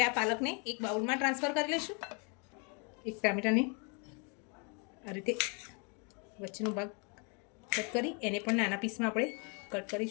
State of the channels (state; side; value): quieter; right; 35.3 dB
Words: આ પાલકને એક બાઉલમાં ટ્રાન્સફર કરી લઈશું. એક ટામેટાને આ રીતે વચ્ચેનો ભાગ કટ કરી એને પણ નાના પીસમાં આપણે કટ